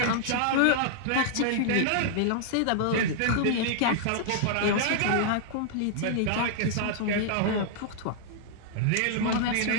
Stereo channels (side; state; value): both; different; correlation -0.01